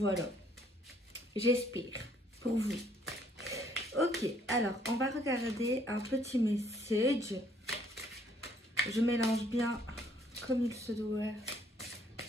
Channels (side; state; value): both; normal; correlation 0.64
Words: J'espère pour vous. Ok, alors on va regarder un petit message. Je mélange bien comme il se doit